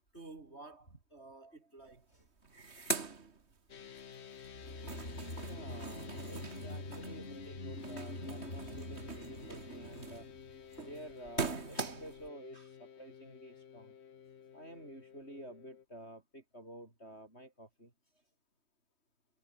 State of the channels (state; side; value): late; right; 3.2 ms